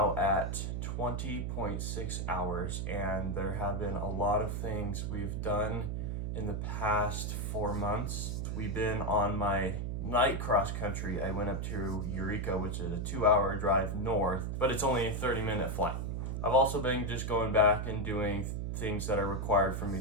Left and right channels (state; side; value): noise; right; hum, 2 dB below the sound